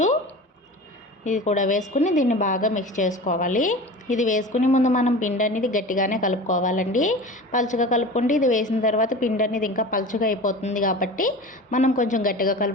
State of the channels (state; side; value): normal; both; correlation 0.35